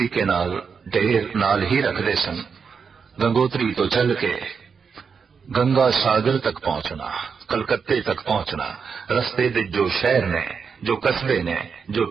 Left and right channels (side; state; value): left; quieter; 5.9 dB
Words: नाल ढेर नाल ही रखते सन। गंगोत्री तो चल के गंगा सागर तक पहुंचना, कलकत्ते तक पहुंचना, रस्ते दे जो शहर ने, जो कस्बे ने, जो